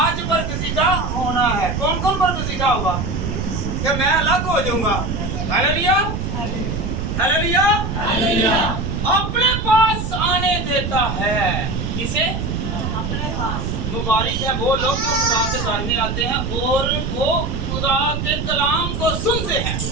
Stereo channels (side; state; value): right; noise; rumble, 3 dB below the sound